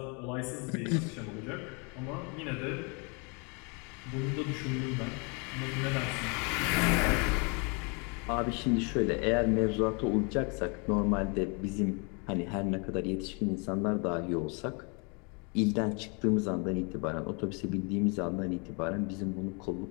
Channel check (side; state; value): right; quieter; 33.4 dB